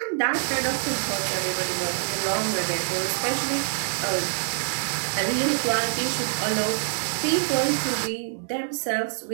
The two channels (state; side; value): silent; left; digital silence